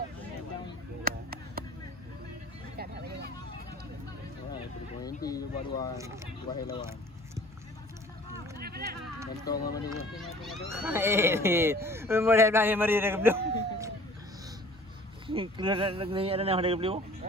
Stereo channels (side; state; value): both; normal; correlation 0.49